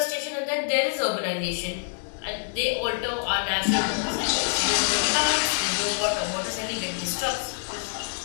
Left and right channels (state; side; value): silent; right; digital silence